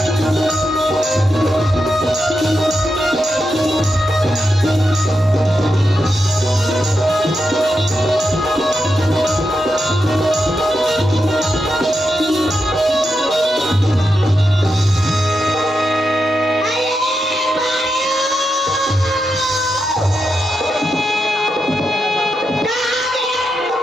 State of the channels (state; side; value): normal; both; correlation 0.86